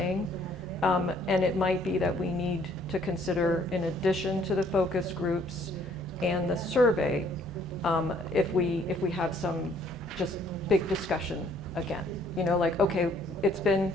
And it might be that we need to consider, in addition to the focus groups and the survey, if we have some just big discussion again. You know, like, okay, it's been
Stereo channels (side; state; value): both; normal; correlation 0.62